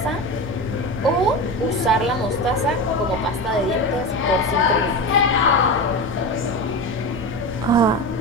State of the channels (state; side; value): normal; both; correlation 0.23